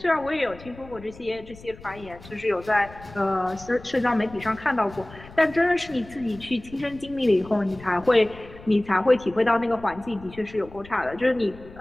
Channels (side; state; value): left; noise; rumble, 19 dB below the sound